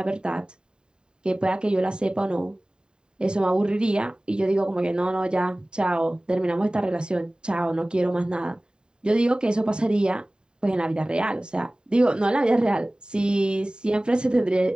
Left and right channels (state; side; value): late; left; 0.048 ms